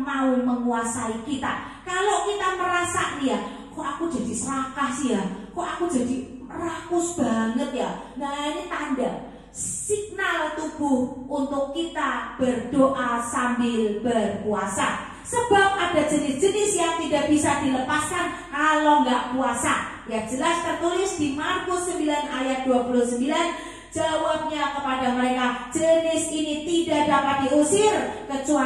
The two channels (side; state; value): both; identical; correlation 1.00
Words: mau menguasai kita. Kalau kita merasa nih ya, kok aku jadi serakah sih ya, kok aku jadi rakus banget ya. Nah, ini tanda signal tubuh untuk kita berdoa sambil berpuasa. Sebab ada jenis-jenis yang tidak bisa dilepaskan kalau nggak puasa. Ya, jelas tertulis di Markus 9 ayat 29. Jawabnya kepada mereka, jenis ini tidak dapat diusir